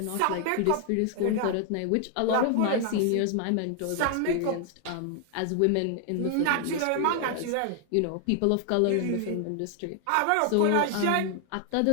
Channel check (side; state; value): both; different; correlation 0.00